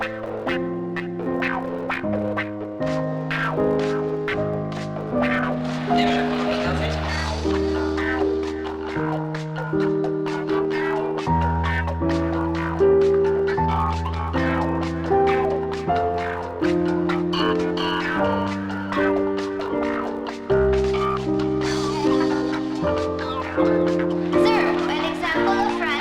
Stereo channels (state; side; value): identical; both; correlation 1.00